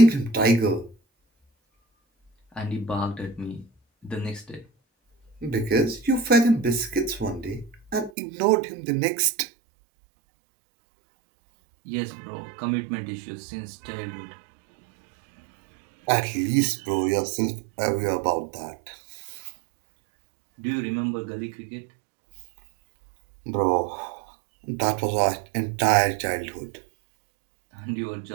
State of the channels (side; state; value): left; drops out; at 8.1 s